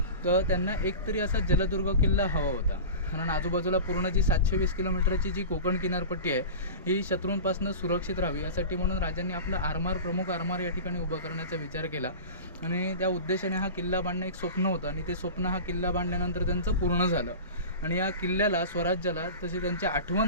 तर त्यांना एकतरी असा जलदुर्ग किल्ला हवा होता. कारण आजूबाजूला पूर्ण जी 720 किलोमीटरची जी कोकण किनारपट्टी आहे ही शत्रूंपासून सुरक्षित राहावी यासाठी म्हणून राजांनी आपला प्रमुख आरमार या ठिकाणी उभा करण्याचा विचार केला. आणि त्या उद्देशाने हा किल्ला बांधणं एक स्वप्न होतं आणि ते स्वप्न हा किल्ला बांधल्यानंतर त्यांचं पूर्ण झालं. आणि या किल्ल्याला स्वराज्याला तशी त्यांची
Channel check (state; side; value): inverted; both; correlation -0.32